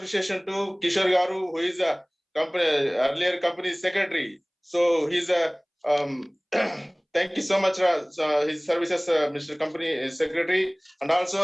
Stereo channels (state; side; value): identical; both; correlation 1.00